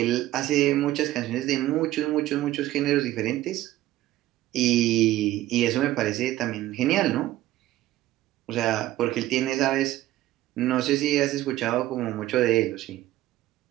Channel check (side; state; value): left; quieter; 15.2 dB